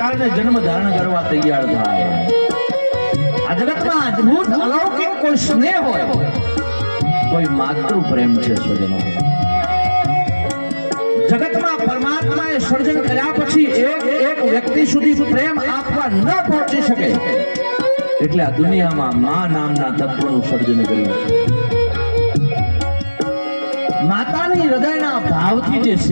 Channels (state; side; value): inverted; both; correlation -1.00